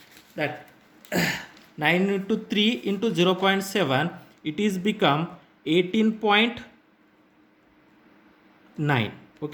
That 9 into 3 into 0.7, it is become 18.9.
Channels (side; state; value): both; identical; correlation 1.00